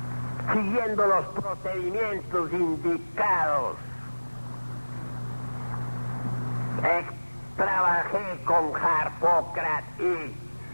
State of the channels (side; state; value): both; inverted; correlation -1.00